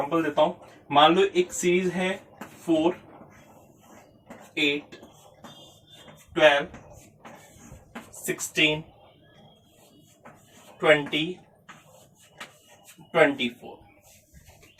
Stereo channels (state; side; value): identical; both; correlation 1.00